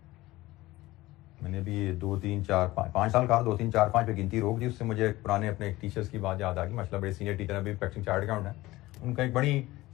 मैंने भी 2 3 4 5 साल कहा, 2 3 4 5 पे गिनती रोक दी। उससे मुझे पुराने अपने टीचर्स की बात याद आ गई। माशाल्लाह बड़े सीनियर टीचर अभी प्रैक्टिसिंग चार्ट अकाउंट है, उनका एक बड़ी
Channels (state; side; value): quieter; right; 18.3 dB